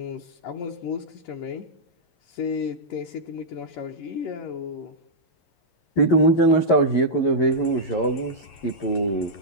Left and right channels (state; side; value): late; right; 11 ms